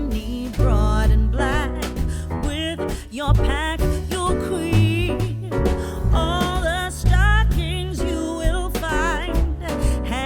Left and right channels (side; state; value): both; identical; correlation 1.00